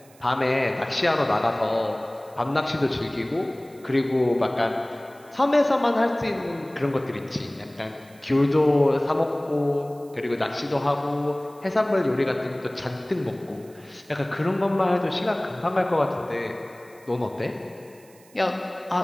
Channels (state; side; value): noise; right; hiss, 27 dB below the sound